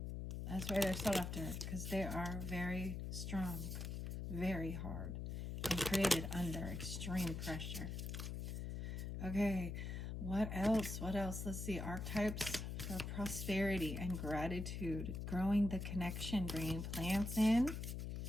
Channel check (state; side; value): noise; left; hum, 4 dB below the sound